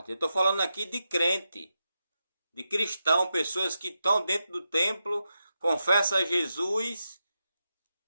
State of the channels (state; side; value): inverted; both; correlation -0.88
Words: Eu estou falando aqui de crente, de cristão, pessoas que estão dentro do templo, confessam a Jesus,